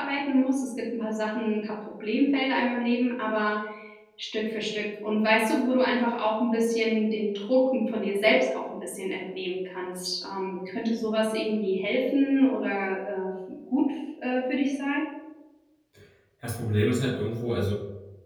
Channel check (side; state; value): both; identical; correlation 1.00